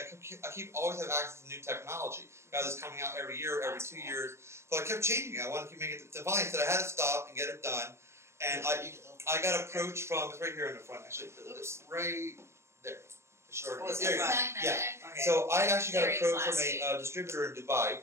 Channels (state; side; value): late; left; 0.13 ms